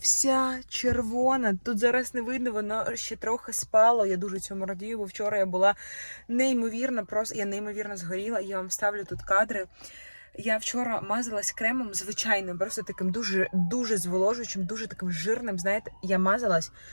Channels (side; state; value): both; inverted; correlation -1.00